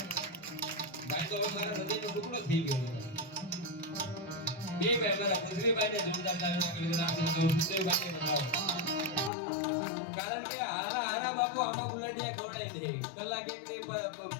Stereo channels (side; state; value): right; drops out; at 9.3 s